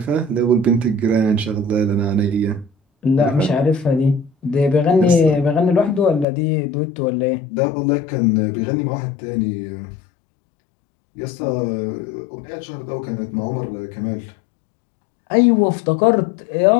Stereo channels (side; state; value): right; drops out; at 6.2 s